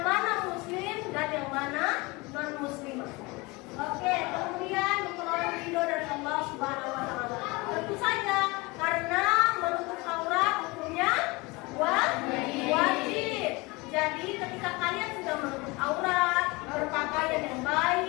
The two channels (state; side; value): quieter; right; 24.7 dB